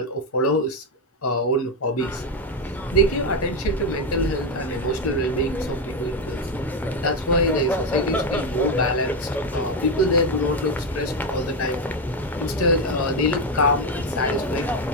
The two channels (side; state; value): both; normal; correlation 0.09